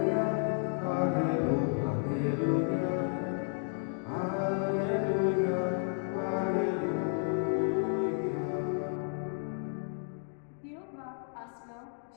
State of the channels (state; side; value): silent; right; 56 dB below the other